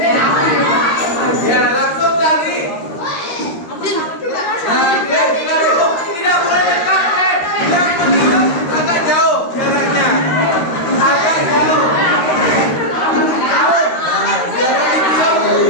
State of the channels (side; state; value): right; late; 13 ms